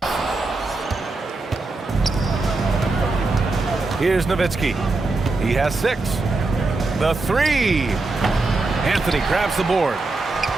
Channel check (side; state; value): left; quieter; 3.4 dB